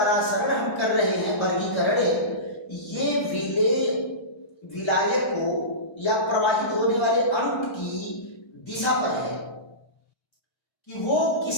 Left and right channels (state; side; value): late; right; 1.3 ms